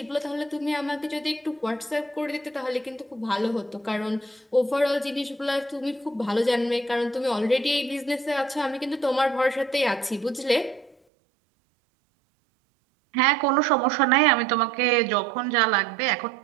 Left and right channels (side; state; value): left; drops out; at 11.0 s